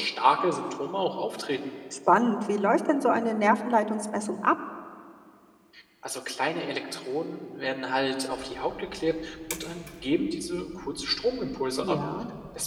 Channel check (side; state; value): both; identical; correlation 1.00